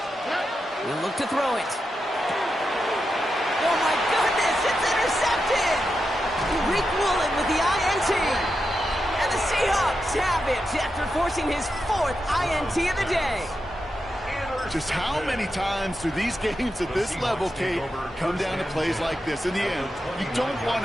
He'll look to throw it. Oh, my goodness, it's intercepted. Rick Woolen with the INT. And the Seahawks have it after forcing his 4th INT of the day. Just how many times do these games at this level, Kate, come down to plays like this? In the end, you don't want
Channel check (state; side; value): normal; both; correlation 0.87